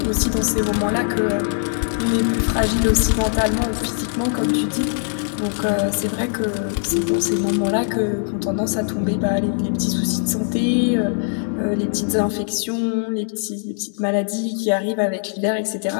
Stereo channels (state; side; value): silent; right; 65 dB below the other